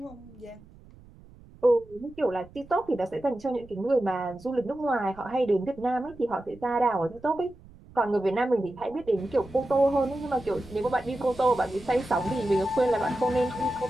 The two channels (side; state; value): right; noise; rumble, 22 dB below the sound